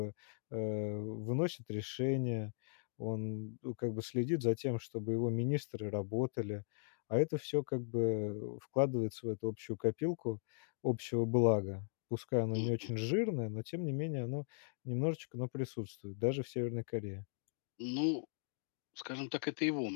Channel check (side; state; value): right; silent; digital silence